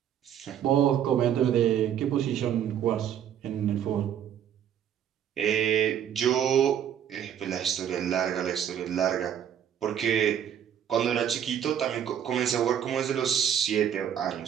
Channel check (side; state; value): left; quieter; 9.4 dB